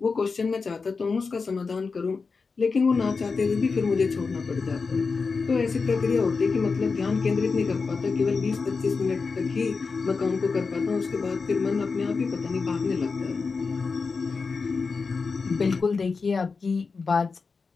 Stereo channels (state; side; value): quieter; right; 4.7 dB